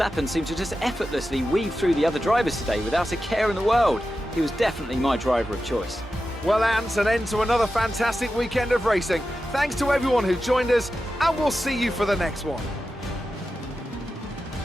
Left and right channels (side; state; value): both; normal; correlation 0.92